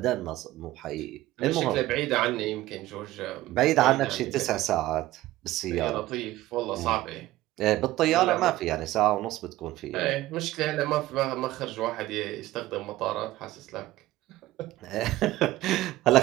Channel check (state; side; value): quieter; left; 16.3 dB